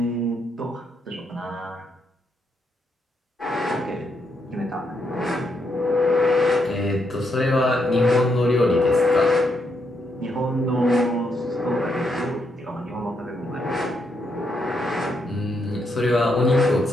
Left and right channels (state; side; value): normal; both; correlation 0.78